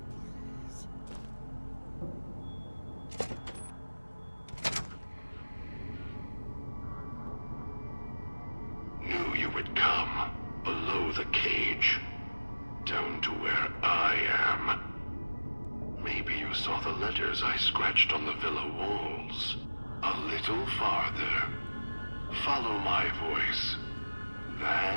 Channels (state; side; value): inverted; both; correlation -1.00